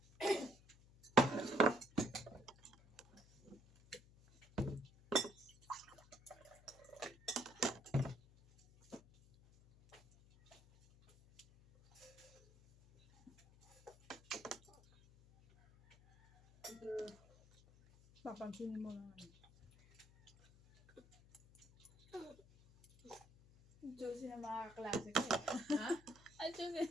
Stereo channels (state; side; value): noise; left; hum, 24 dB below the sound